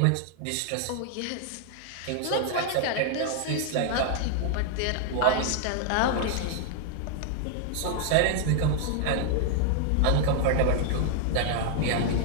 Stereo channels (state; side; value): different; both; correlation 0.00